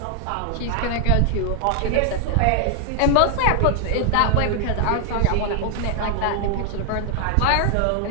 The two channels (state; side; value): different; both; correlation 0.00